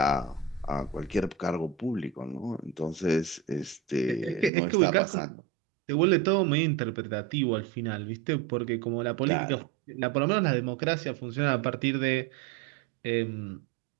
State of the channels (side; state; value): left; drops out; at 4.5 s